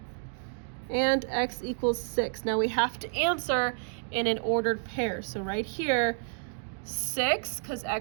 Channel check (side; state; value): left; silent; digital silence